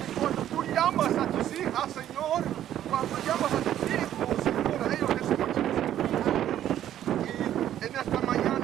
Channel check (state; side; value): quieter; left; 11.5 dB